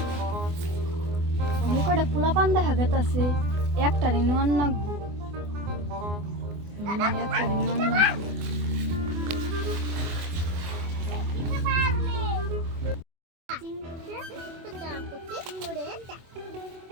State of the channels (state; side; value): late; left; 24 ms